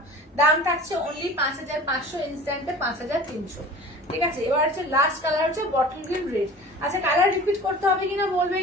দাম থাকছে অনলি 5500, ইনস্ট্যান্টে 5300, ঠিক আছে। এবার হচ্ছে লাস্ট কালার হচ্ছে বটল গ্রিন রেড। আচ্ছা কালার রিপিট করতে হবে কিনা বলবে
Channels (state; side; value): normal; both; correlation 0.40